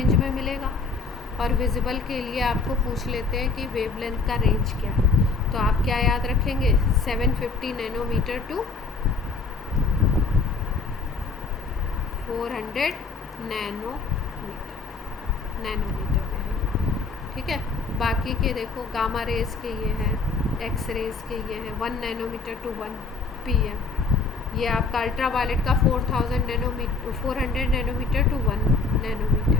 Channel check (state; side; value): quieter; right; 4.3 dB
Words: में मिलेगा। और विजिबल के लिए आपको पूछ लेते हैं कि वेवलेंथ का रेंज क्या है, तो आप क्या याद रखेंगे, 750 नैनोमीटर टू 400 नैनोमीटर में है। ठीक है, बाकी के देखो गामा रेस के ये हैं, एक्स रेस के ये हैं 1 नैनोमीटर टू 1 PM। ये आपका अल्ट्रा वायलेट का 400 नैनोमीटर टू 1